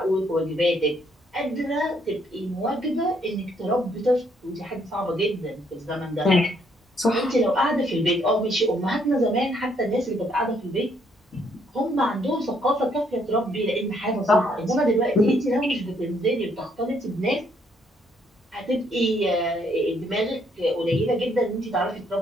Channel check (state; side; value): normal; both; correlation 0.70